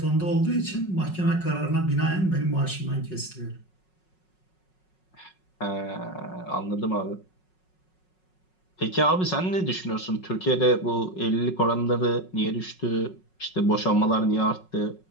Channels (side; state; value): right; late; 5.4 ms